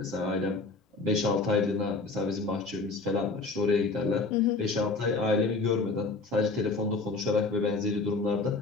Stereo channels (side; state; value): right; quieter; 3.8 dB